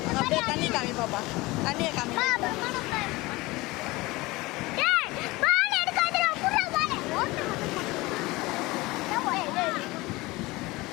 அப்படியே தண்ணி காமி பாப்பா, தண்ணியை காமி.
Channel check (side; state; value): right; quieter; 21.4 dB